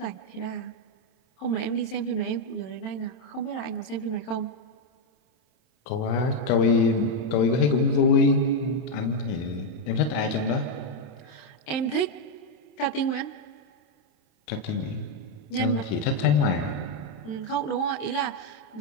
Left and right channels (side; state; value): right; late; 27 ms